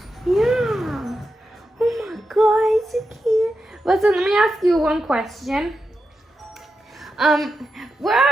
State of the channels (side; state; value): both; normal; correlation 0.88